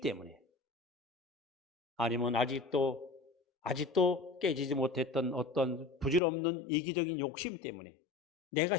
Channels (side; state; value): right; drops out; at 6.2 s